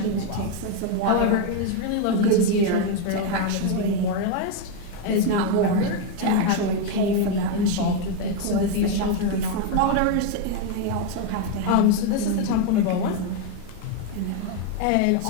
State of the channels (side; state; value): both; different; correlation 0.02